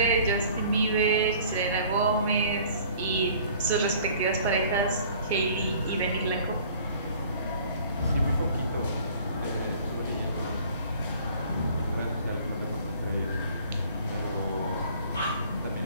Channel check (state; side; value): inverted; both; correlation -0.51